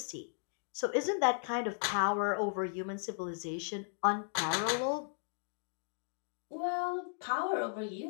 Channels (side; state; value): right; silent; digital silence